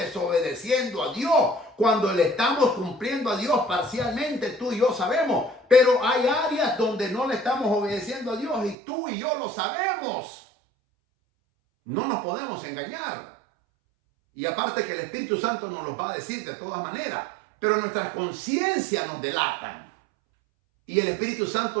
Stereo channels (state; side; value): drops out; left; at 8.8 s